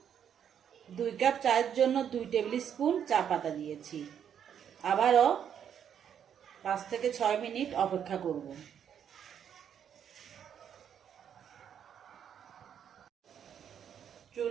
2 কাপ চায়ের জন্য 2 টেবিল স্পুন চা পাতা দিয়েছি। আবারও 5 থেকে 6 মিনিট অপেক্ষা করব।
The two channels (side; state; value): left; quieter; 8.7 dB